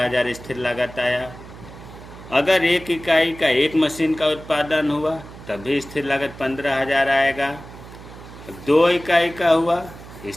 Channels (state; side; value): noise; right; hum, 16 dB below the sound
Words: स्थिर लागत आया। अगर एक इकाई का एक मशीन का उत्पादन हुआ तब भी स्थिर लागत 15,000 आएगा। 2 इकाई का हुआ,